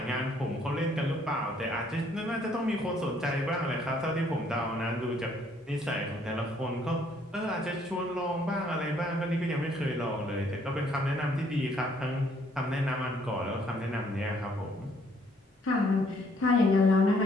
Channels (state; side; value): normal; both; correlation 0.65